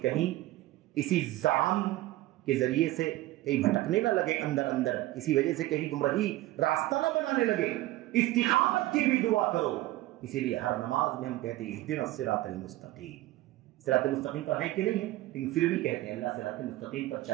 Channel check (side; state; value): left; quieter; 16.9 dB